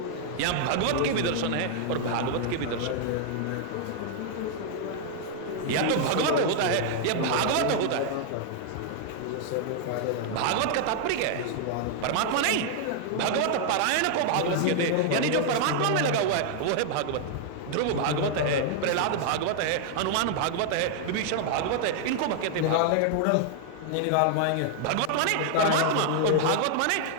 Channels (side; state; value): both; different; correlation 0.00